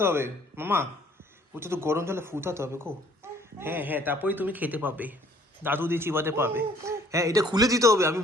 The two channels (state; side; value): normal; both; correlation 0.58